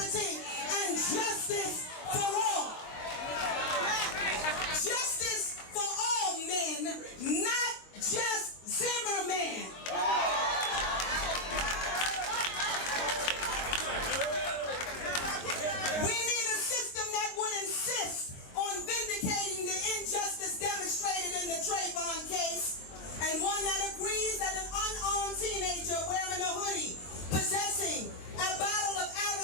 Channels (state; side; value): late; right; 23 ms